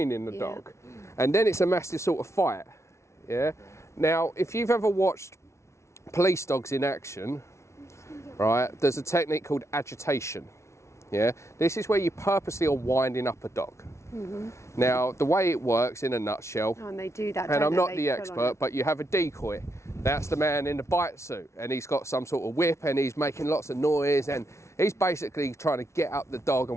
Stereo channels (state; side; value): late; right; 0.13 ms